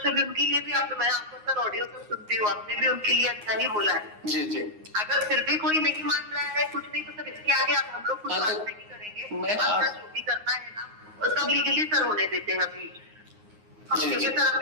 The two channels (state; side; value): late; left; 9.6 ms